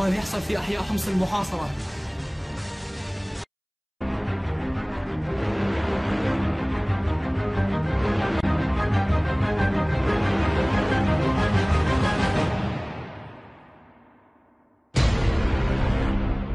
يحصل في أحياء حمص المحاصرة؟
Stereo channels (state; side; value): identical; both; correlation 1.00